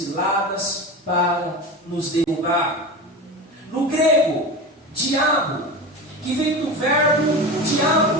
para nos derrubar. No grego, diabo, que vem do verbo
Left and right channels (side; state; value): both; normal; correlation 0.27